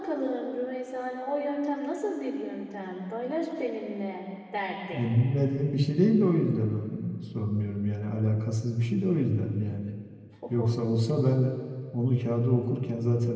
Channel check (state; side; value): identical; both; correlation 1.00